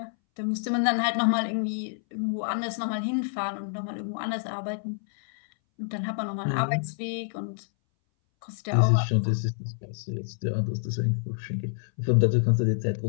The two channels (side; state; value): right; silent; 59 dB below the other